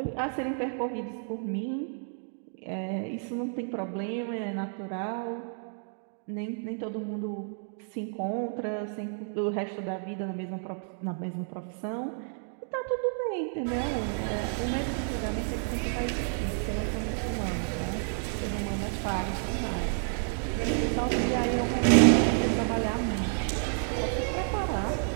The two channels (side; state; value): left; silent; 58 dB below the other